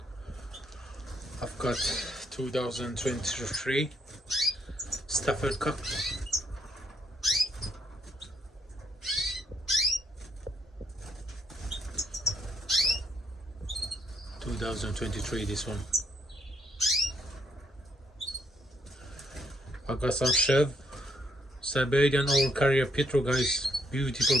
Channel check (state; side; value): normal; both; correlation 0.73